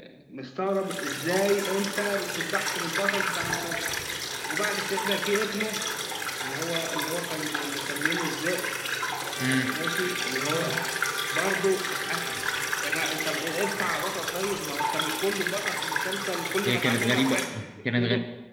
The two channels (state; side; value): identical; both; correlation 1.00